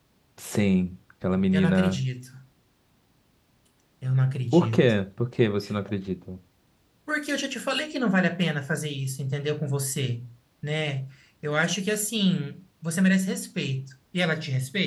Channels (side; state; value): both; identical; correlation 1.00